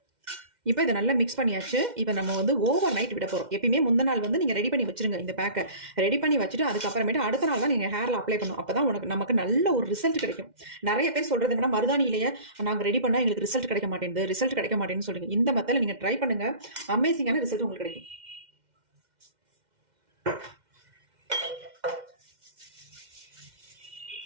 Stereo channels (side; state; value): left; late; 2.1 ms